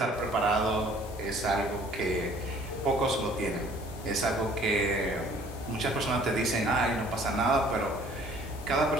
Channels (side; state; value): both; normal; correlation 0.55